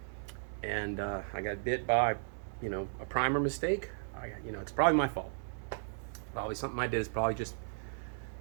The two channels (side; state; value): left; silent; digital silence